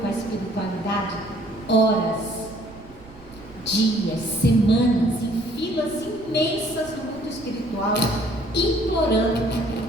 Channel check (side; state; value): right; noise; rumble, 21 dB below the sound